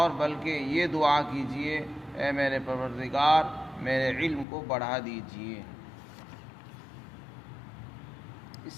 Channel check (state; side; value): drops out; right; at 4.5 s